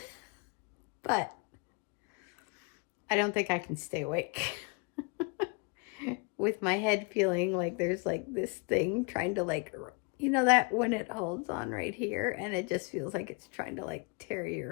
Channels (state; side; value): quieter; right; 32.4 dB